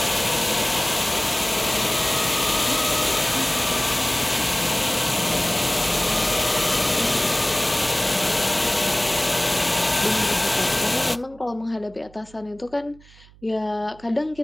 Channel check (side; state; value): right; noise; hum, 25 dB below the sound